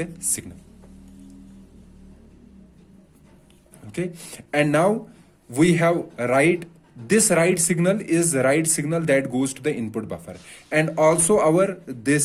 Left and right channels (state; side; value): identical; both; correlation 1.00